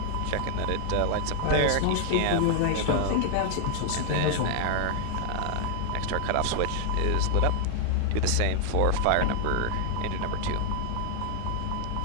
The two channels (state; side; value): different; both; correlation 0.00